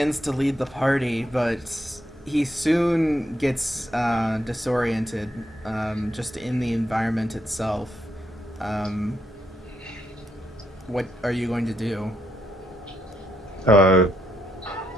to lead the party, but he soon gets disoriented just in the environment itself. What are you going to do?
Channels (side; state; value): both; normal; correlation 0.78